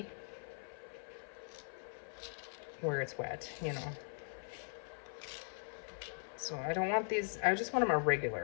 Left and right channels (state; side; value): silent; right; 51 dB below the other